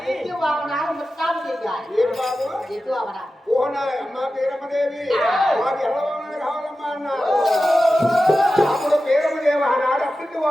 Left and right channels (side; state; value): both; normal; correlation 0.93